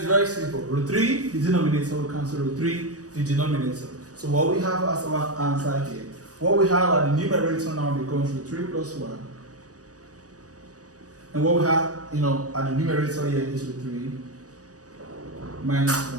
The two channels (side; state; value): left; late; 0.67 ms